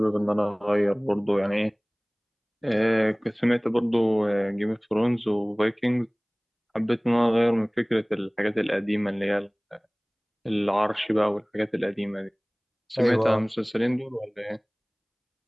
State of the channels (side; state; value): both; identical; correlation 1.00